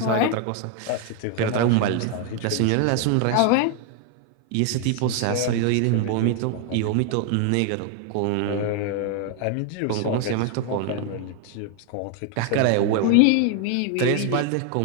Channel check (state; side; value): different; both; correlation 0.00